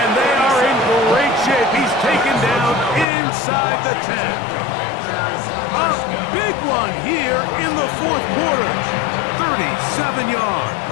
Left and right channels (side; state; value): right; drops out; at 3.1 s